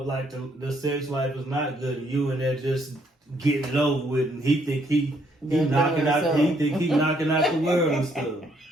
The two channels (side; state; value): both; normal; correlation 0.70